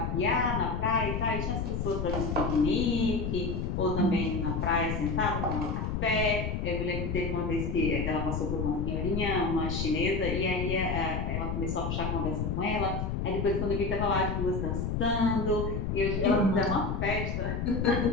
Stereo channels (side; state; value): left; noise; rumble, 1 dB below the sound